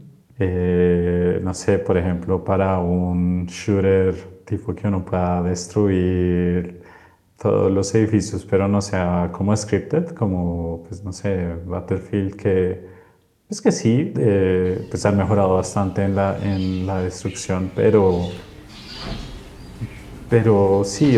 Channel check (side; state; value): both; identical; correlation 1.00